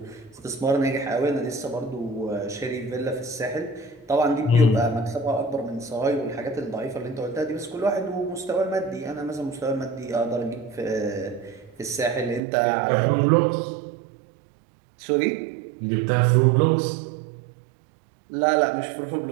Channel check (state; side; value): drops out; left; at 12.4 s